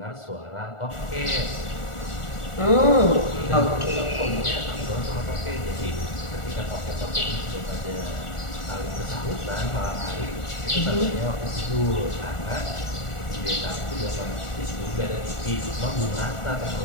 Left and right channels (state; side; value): late; right; 1.4 ms